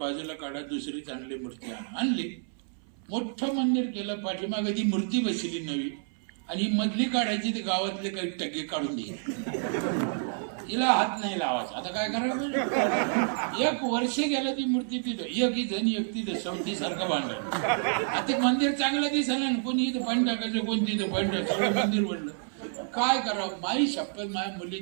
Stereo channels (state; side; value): silent; left; 59 dB below the other